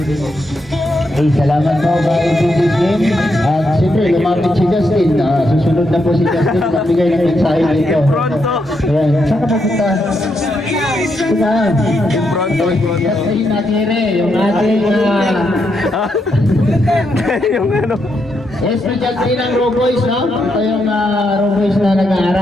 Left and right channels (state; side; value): normal; both; correlation 0.81